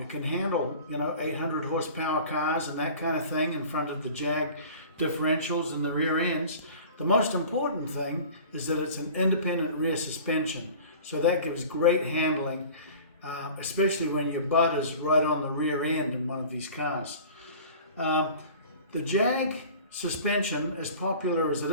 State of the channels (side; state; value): both; inverted; correlation -0.42